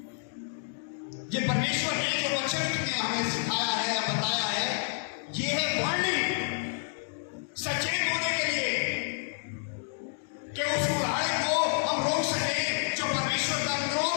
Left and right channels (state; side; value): silent; right; digital silence